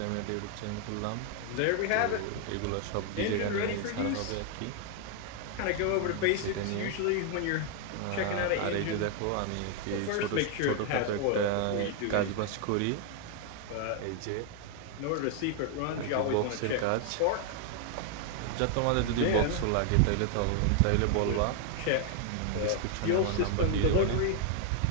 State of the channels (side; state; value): both; different; correlation 0.00